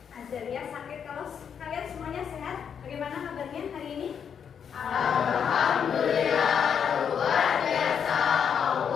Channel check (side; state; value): right; quieter; 7.6 dB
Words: Azalia sakit. Kalau kalian semuanya sehat, bagaimana kabarnya hari ini?